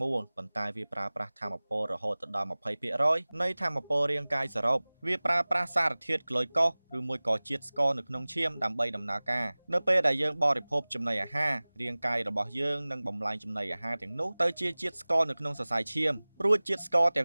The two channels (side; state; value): both; inverted; correlation -1.00